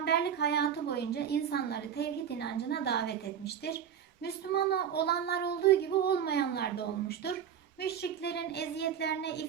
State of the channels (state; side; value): quieter; left; 8.6 dB